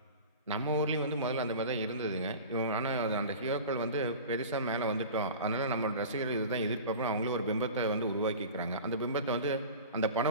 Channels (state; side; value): inverted; both; correlation -0.36